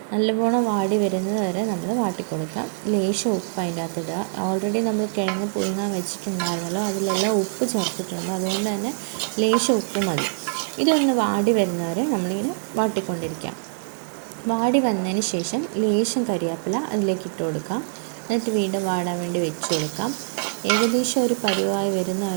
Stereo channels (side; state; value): left; silent; 59 dB below the other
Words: നല്ലവണ്ണം വാടി വരുന്നത് വരെ നമ്മൾ വാട്ടിക്കൊടുക്കാം. ലേശം ഉപ്പ് അതിൻ്റെ അകത്തിടുക. ഓൾറെഡി നമ്മൾ കിഴങ്ങ് പുഴുങ്ങാൻ വെച്ചിട്ടുണ്ടായിരുന്നല്ലോ, അതിലെല്ലാം ഉപ്പ് ചേർത്തിട്ടുണ്ട്. അതുകൊണ്ട് തന്നെ ലേശം ഉപ്പ് മതി. ഇതൊന്ന് വാടി വരുന്നവരെ നമ്മളിങ്ങനെ വാട്ടിക്കൊണ്ടിരിക്കാം. വാടി വന്നതിന് ശേഷം ലേശം കരിവേപ്പില അതിലേക്ക് ഇട്ട് കൊടുക്കാം. എന്നിട്ട് വീണ്ടും വാടാൻ വേണ്ടി വെച്ച് കൊടുക്കാം. ഏകദേശം ഒരു പരുവായി